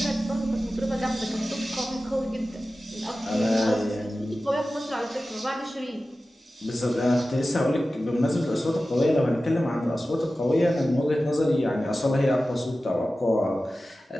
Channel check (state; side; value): normal; both; correlation 0.95